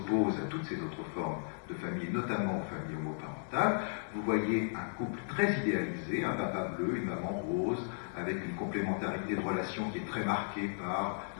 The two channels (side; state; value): right; silent; digital silence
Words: à toutes ces autres formes de famille, notamment aux familles homoparentales, vous voyez un couple très idéalisé, un papa bleu, une maman rose, avec une complémentarité de relations qui est très marquée par